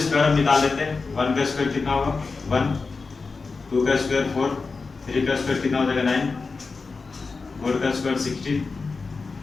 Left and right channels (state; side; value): quieter; right; 4.3 dB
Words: हम निकाल लेते हैं। 1 का स्क्वायर कितना होगा 1, 2 का स्क्वायर 4, 3 का स्क्वायर कितना हो जाएगा 9, 4 का स्क्वायर 16,